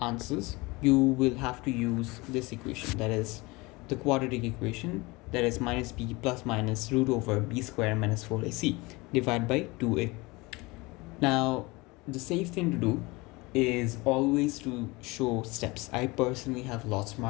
you will have to use this equation, that is the quadratic equation, that is minus b plus minus root over b square minus 4ac divided by 2a. Now the safe thing to do is always to show steps. I personally have lots of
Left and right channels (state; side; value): quieter; right; 23.8 dB